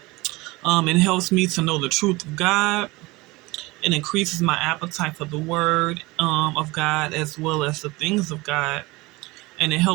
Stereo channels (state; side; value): quieter; left; 22.3 dB